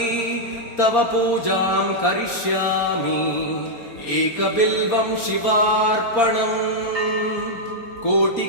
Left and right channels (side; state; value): right; late; 4.3 ms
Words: तव पूजां करिष्यामि एकबिल्वं शिवार्पणम्